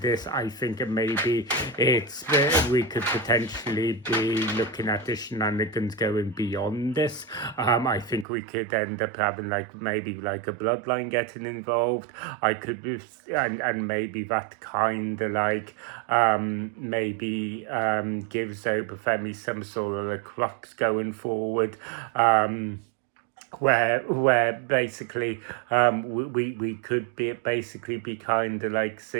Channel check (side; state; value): left; drops out; at 8.2 s